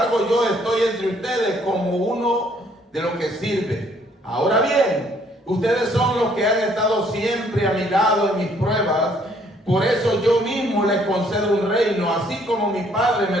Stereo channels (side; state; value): both; normal; correlation 0.64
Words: yo estoy entre ustedes como uno de los que sirve. Ahora bien, ustedes son los que han estado siempre a mi lado en mis pruebas. Por eso yo mismo les concedo un reino, así como mi Padre me